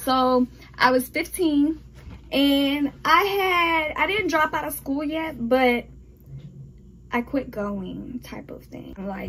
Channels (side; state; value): both; identical; correlation 1.00